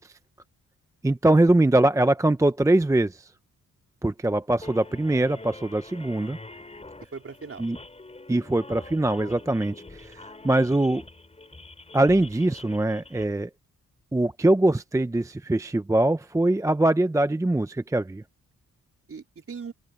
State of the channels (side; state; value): both; normal; correlation 0.91